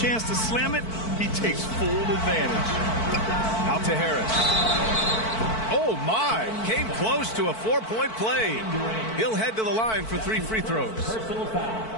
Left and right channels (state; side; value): late; right; 4.5 ms